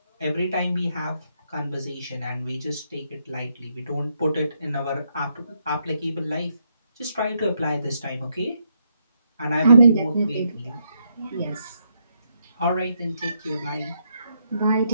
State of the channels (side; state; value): both; inverted; correlation -0.77